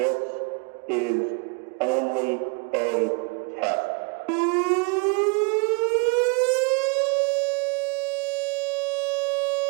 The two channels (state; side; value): quieter; left; 33.4 dB